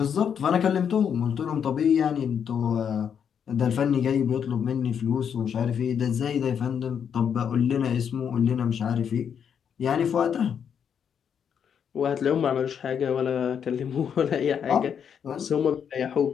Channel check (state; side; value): quieter; right; 7.8 dB